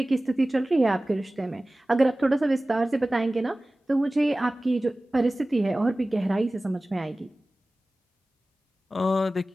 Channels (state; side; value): normal; both; correlation 0.97